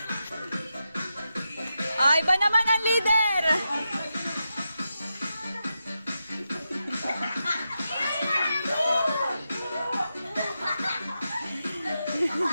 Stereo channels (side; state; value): both; inverted; correlation -0.88